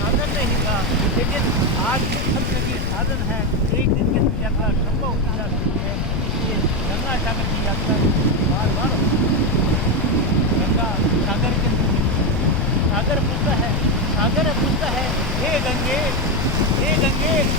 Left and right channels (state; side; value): noise; left; rumble, 1 dB below the sound